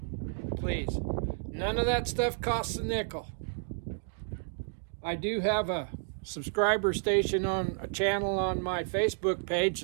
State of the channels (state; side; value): silent; left; digital silence